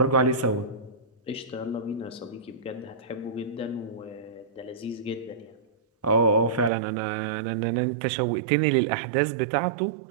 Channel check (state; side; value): drops out; left; at 6.7 s